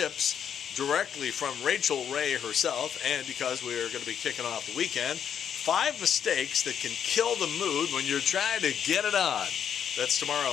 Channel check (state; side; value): quieter; right; 8.4 dB